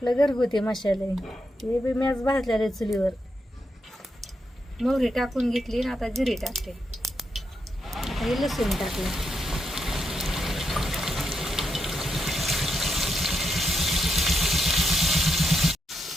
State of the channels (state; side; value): normal; both; correlation 0.82